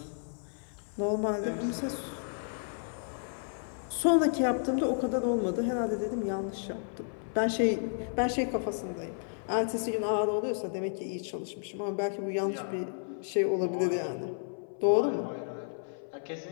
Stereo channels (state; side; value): silent; right; 56 dB below the other